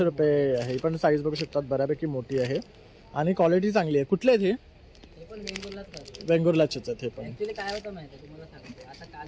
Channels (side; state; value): both; identical; correlation 1.00